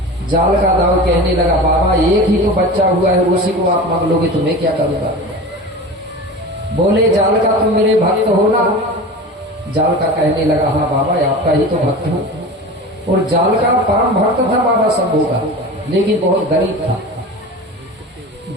जालका दाऊ कहने लगा, बाबा एक ही तो बच्चा हुआ है, उसी को आप मांग लोगे तो मैं क्या करूंगा? बोले जालका तुम मेरे भक्त हो ना? जालका कहने लगा, हाँ बाबा आपका ही तो भक्त हूं। और जालका परम भक्त था बाबा शंभू का, लेकिन बहुत गरीब था,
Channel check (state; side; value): normal; both; correlation 0.32